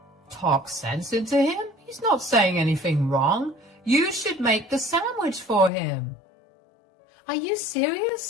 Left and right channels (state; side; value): drops out; right; at 5.7 s